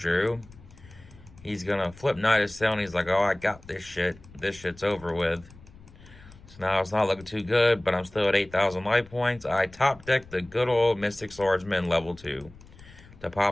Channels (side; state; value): left; noise; rumble, 22 dB below the sound